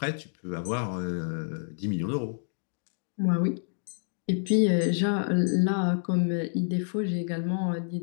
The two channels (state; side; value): silent; right; digital silence